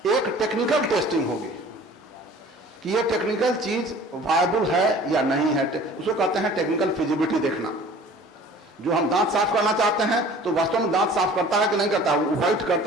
एक टेक्निकल टेस्टिंग होगी कि ये टेक्निकल चीज वायबल है या नहीं है, उसको कहते हैं टेक्निकल फिजिबिलिटी देखना। जो हम दांत साफ करना चाहते हैं तो वास्तव में दांत साफ करता है कि नहीं करता है, व्हाइट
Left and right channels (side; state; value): both; normal; correlation 0.47